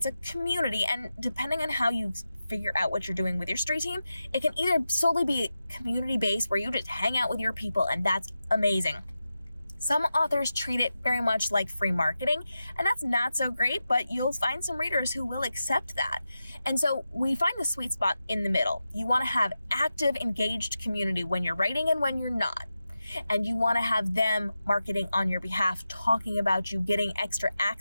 a community, and depending on how you figure out what you're doing with your street team, it can either solely be community-based, where you just hang out with your people, and that's amazing. Some authors treat it very much like free marketing, and that's not so great, but you'll find some readers who will accept that. And so we find the sweet spot in the middle. You want to have active, engaged community when you're writing and when you're not. And you want to have them marketing on your behalf, talking about you, getting extra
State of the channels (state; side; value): inverted; both; correlation -0.91